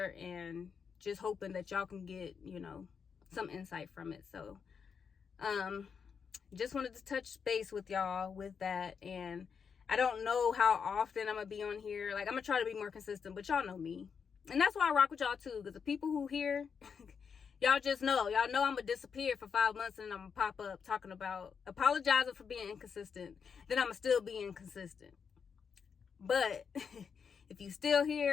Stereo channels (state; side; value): quieter; right; 6.4 dB